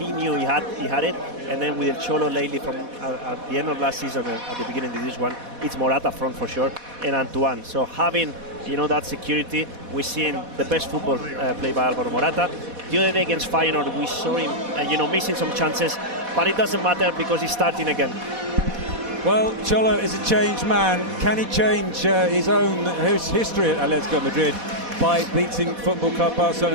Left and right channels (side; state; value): left; late; 4.1 ms